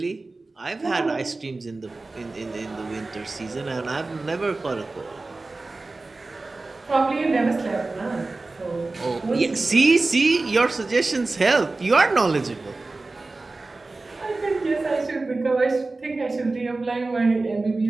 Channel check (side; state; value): left; quieter; 3.4 dB